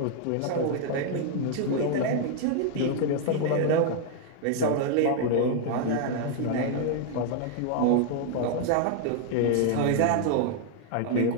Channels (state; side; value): different; both; correlation 0.00